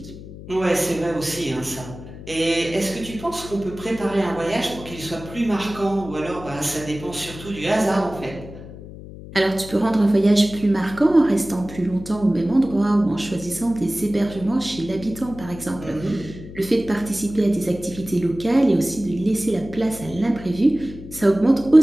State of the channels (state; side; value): noise; left; hum, 14 dB below the sound